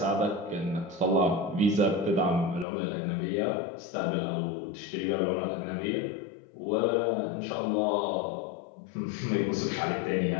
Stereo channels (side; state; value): right; drops out; at 2.7 s